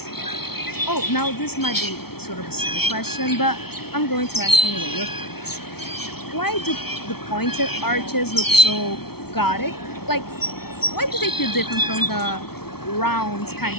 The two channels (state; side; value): late; right; 0.95 ms